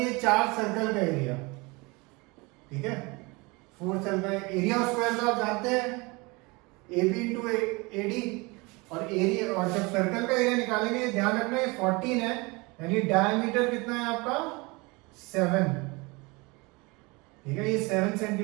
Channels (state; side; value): quieter; left; 26.0 dB